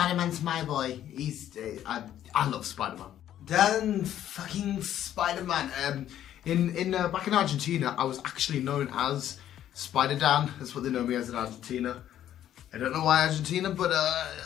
my boy. I love Spider-Man. Dan fucking Spider-Man. Back in Argentina, I was actually known as Spider-Dan. That's what they know me as in Argentina. I don't know why Argentina, but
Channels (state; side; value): quieter; right; 11.4 dB